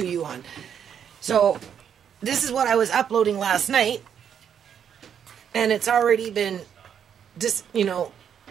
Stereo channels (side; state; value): left; quieter; 8.3 dB